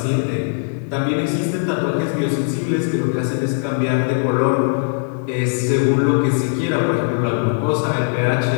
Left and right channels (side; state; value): right; silent; digital silence